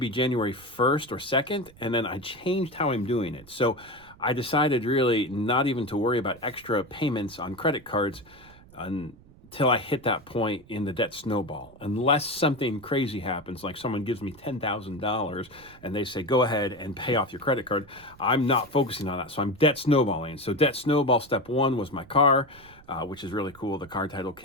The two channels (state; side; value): noise; right; rumble, 24 dB below the sound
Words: January 1st or 2nd, and then I changed how I'm doing it. So I decided really not even to worry about extra payments on credit cards until I hit that point in the debt snowball. Unless something crazy happens, like someone gives me $10,000 and they say, go ahead and pay off your credit card, I'm not focusing on that. So I'm debt snowballing. So debt snowball step 1 was my car, which is really cool. The car title